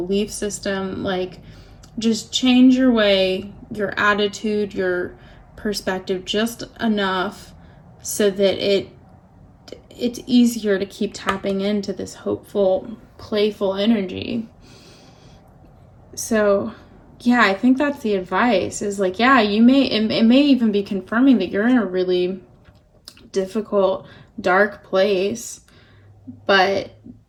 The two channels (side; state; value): both; identical; correlation 1.00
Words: system. Like just change your way, your attitude, your perspective just enough so that it's easier to keep tapping into this hopeful, playful energy. So yeah, I think that's the advice, is like, yeah, it may even be confirming that you're in a really difficult, dark place, but